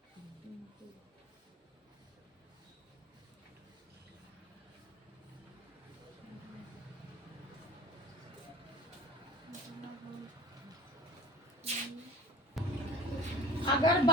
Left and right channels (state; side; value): normal; both; correlation 0.40